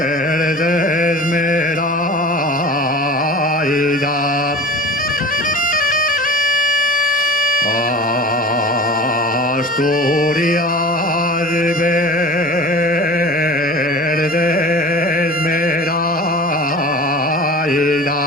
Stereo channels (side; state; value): both; normal; correlation 0.37